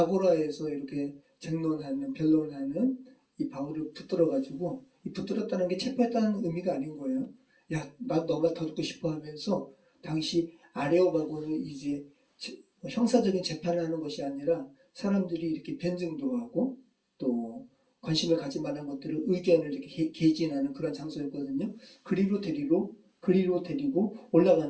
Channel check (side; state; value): both; identical; correlation 1.00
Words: 이렇게 쟁론하는 변론하는 이 바울을 붙들어가지고 이 붙들었다는 게 체포했다는 의미가 아닌 거예요. 야, 나 너 말 더 듣고 싶어 하면서 당시 아레오바고는 이제 형사적인 재판을 하는 것이 아니라 사람들이 이렇게 변증도 하고 또 관심을 가질 만한 것들을 의견을 이렇게 개진하는 그런 장소였거든요. 그리로 데리고